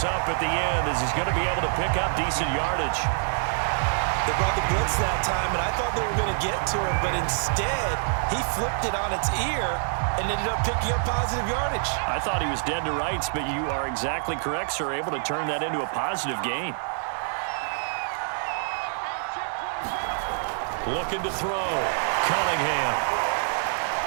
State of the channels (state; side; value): silent; left; 61 dB below the other